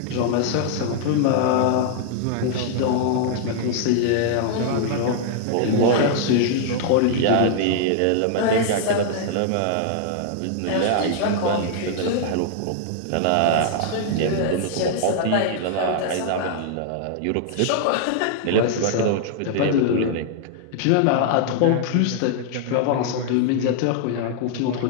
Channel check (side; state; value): both; different; correlation -0.01